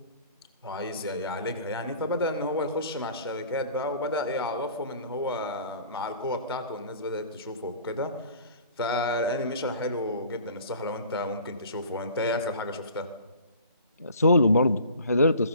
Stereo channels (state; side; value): inverted; both; correlation -0.47